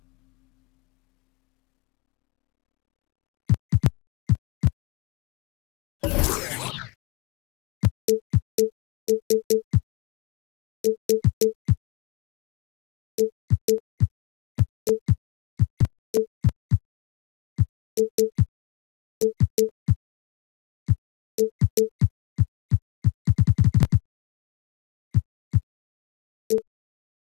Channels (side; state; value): right; quieter; 25.2 dB